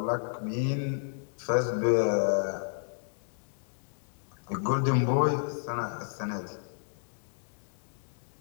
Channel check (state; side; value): silent; right; digital silence